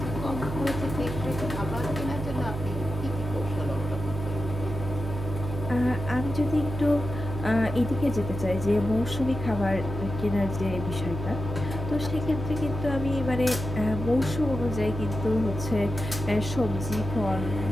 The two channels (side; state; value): right; noise; hum, 6 dB below the sound